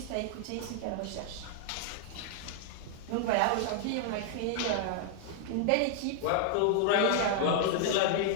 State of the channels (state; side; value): different; both; correlation 0.00